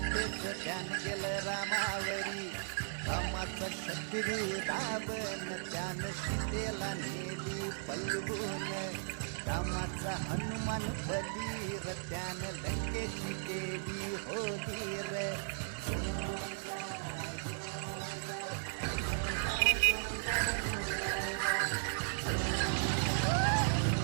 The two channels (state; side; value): silent; left; digital silence